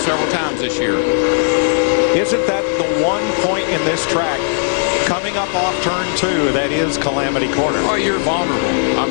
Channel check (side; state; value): right; silent; digital silence